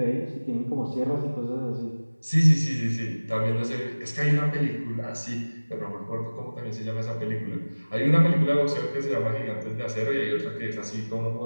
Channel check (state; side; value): inverted; both; correlation -1.00